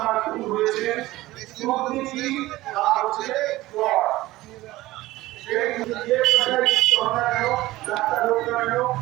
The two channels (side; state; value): left; quieter; 17.6 dB